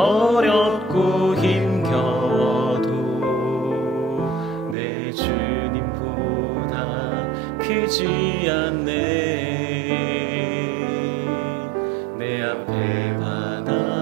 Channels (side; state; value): left; drops out; at 4.8 s